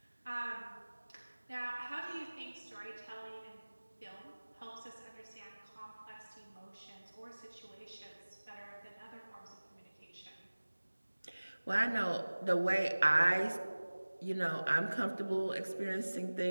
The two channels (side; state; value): both; inverted; correlation -1.00